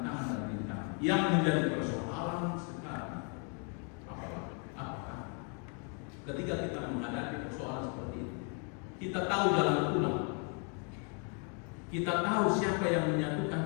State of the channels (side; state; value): right; quieter; 39.3 dB